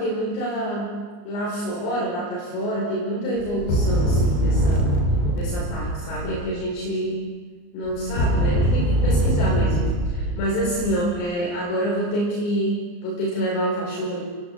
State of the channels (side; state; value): right; late; 34 ms